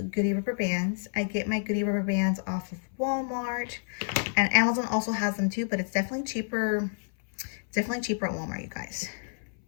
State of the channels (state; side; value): silent; right; 58 dB below the other